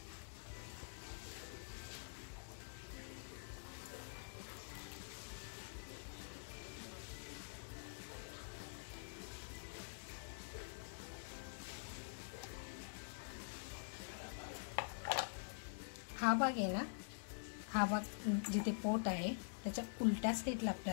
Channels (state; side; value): silent; right; digital silence